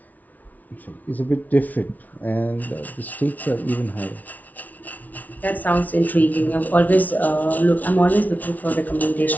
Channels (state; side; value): late; right; 0.076 ms